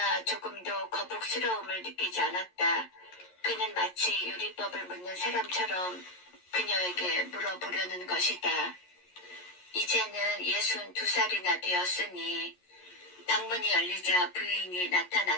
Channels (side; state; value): right; late; 11 ms